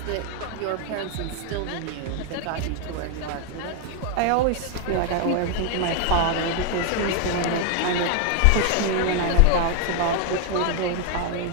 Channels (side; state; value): both; different; correlation 0.00